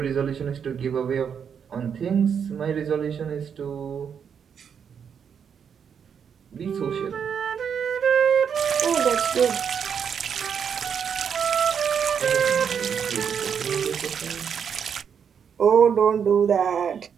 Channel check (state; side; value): quieter; left; 7.3 dB